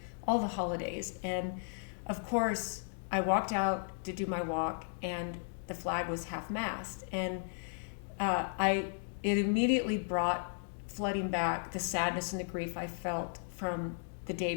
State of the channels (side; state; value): right; silent; digital silence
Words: all the holidays. And of course I walked out to do my walk and the flag was half-mast, and it immediately brought flooding back the sadness and the grief I felt from the day